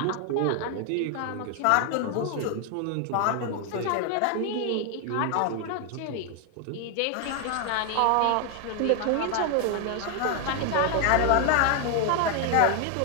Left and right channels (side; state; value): both; different; correlation 0.01